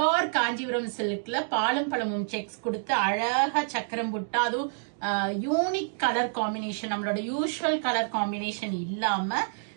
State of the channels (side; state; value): left; silent; digital silence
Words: காஞ்சிபுரம் சில்க்ல பாலும் பழமும் செக்ஸ் கொடுத்து அழகா சக்கரம் புட்டா, அதுவும் யூனிக் கலர் காம்பினேஷன், நம்மளோட யூஸ்வல் கலர் காம்பினேஷன் இல்லாம